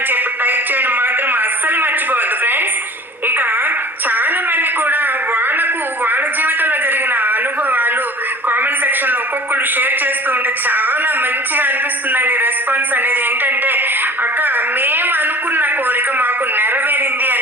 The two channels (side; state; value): both; normal; correlation 0.42